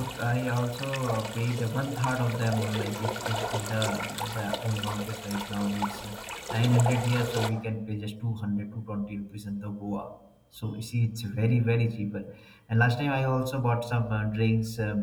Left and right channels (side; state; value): both; identical; correlation 1.00